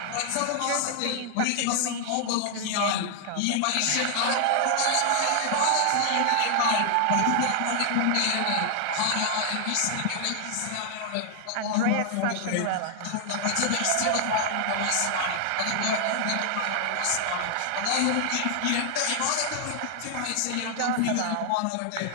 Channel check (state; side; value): different; both; correlation 0.00